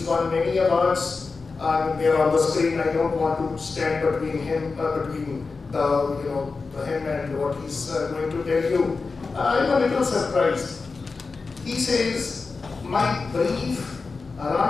won many awards. They're on the screen. I don't want to stand between him, him and what he's going to tell you. I'm a little surprised. He says, my brief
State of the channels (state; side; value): quieter; right; 4.3 dB